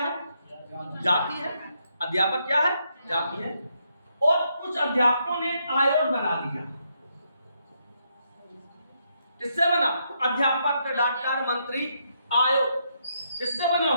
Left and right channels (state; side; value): inverted; both; correlation -0.78